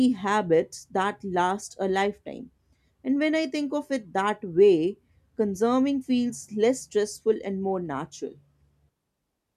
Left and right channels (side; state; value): both; identical; correlation 1.00